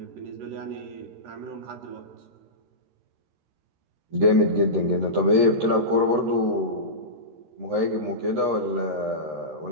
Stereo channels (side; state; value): left; late; 13 ms